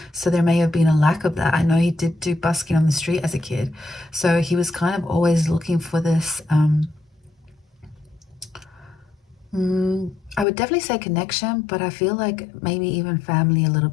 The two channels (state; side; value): drops out; right; at 10.5 s